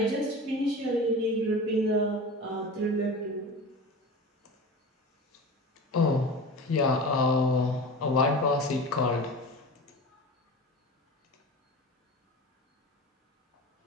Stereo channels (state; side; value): normal; both; correlation 0.32